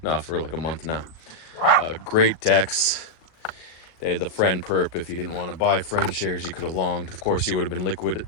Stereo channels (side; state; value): right; late; 38 ms